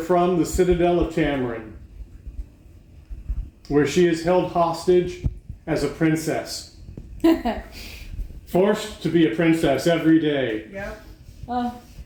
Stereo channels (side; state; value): both; identical; correlation 1.00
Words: the citadel of Tamorin, where she is held hostage as a princess. Forced to be a princess every day. Yep. Oh,